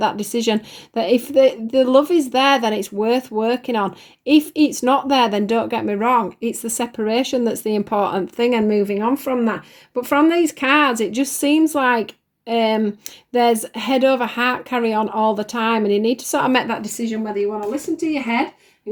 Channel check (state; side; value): identical; both; correlation 1.00